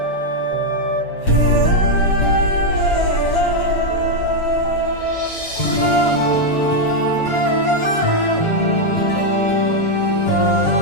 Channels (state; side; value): late; right; 7.2 ms